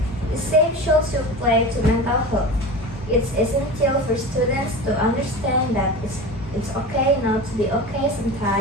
The same should apply to mental health. It's essential for students to understand that it's okay not to be okay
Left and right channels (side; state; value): both; normal; correlation 0.31